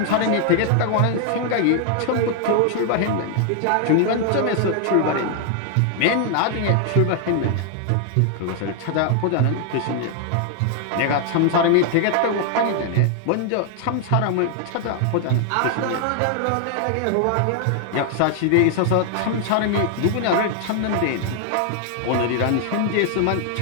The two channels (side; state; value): both; different; correlation 0.00